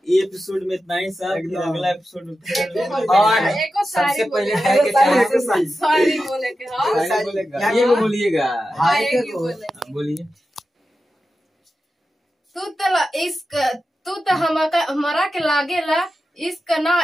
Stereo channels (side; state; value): both; normal; correlation 0.91